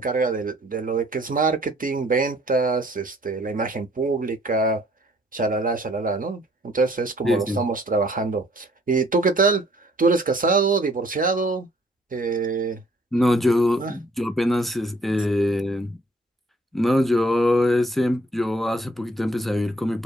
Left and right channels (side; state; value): both; normal; correlation 0.61